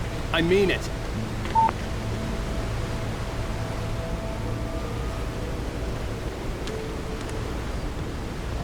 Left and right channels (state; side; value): identical; both; correlation 1.00